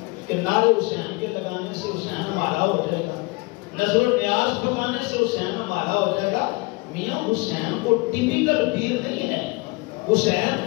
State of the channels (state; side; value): quieter; right; 25.5 dB